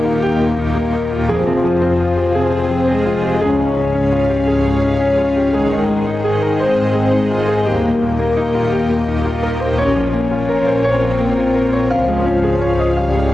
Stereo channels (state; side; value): normal; both; correlation 0.93